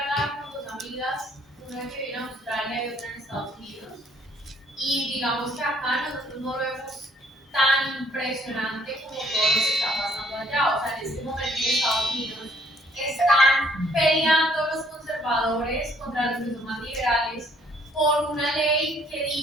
con dos amigas, una que vive en Australia y otra en Estados Unidos. Y digamos que acá nosotros no lo vemos tan impresionante como todo lo que está pasando allá. O sea, en este momento en Estados Unidos están peleando los conservadores contra los que son más liberales por una ley que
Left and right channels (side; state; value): both; normal; correlation 0.63